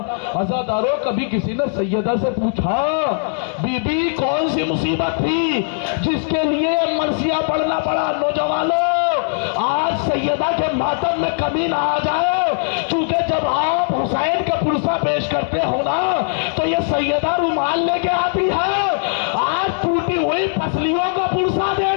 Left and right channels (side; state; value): right; silent; 64 dB below the other